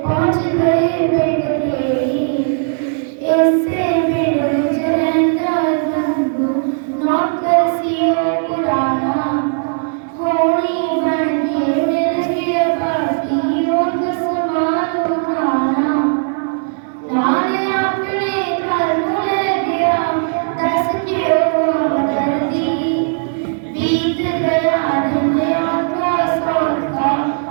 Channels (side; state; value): left; silent; digital silence